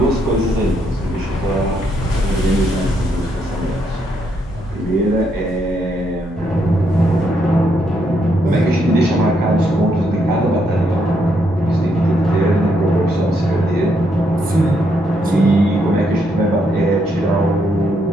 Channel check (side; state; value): both; normal; correlation 0.76